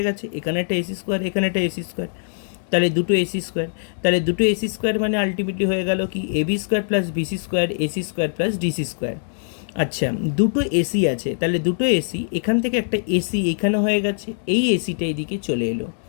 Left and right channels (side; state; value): right; silent; digital silence